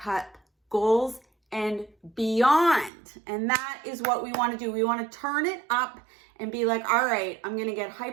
goals and beyond. And that is what we want to do. We want to turn it up and be like, all right, I'm going to get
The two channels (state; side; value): drops out; left; at 2.9 s